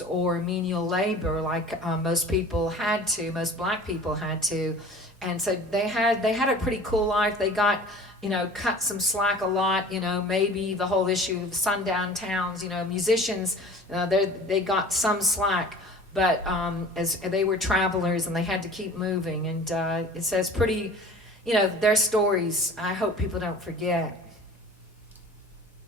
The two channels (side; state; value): both; normal; correlation 0.43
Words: or menial labor like most black people had to. And so they had a pretty cool life. They got, you know, cut some slack a lot, you know, maybe the whole issue of sundown towns, you know, musicians, they got some slack. But as they were travelers and they had to keep moving, and it says pretty, you know, their stories I hope people don't forget.